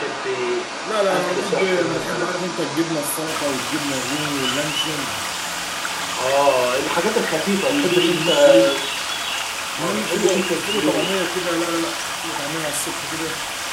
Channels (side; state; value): both; identical; correlation 1.00